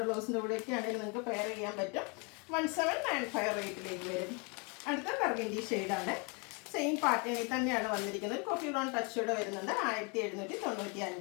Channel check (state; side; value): quieter; right; 32.9 dB